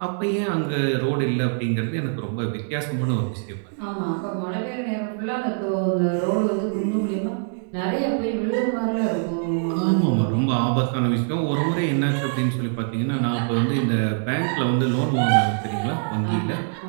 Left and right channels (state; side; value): silent; left; digital silence